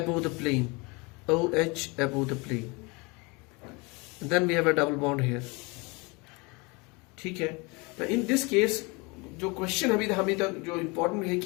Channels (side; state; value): right; quieter; 27.7 dB